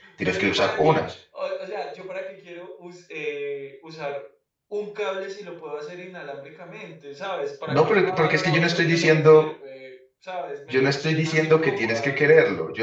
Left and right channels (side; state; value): both; identical; correlation 1.00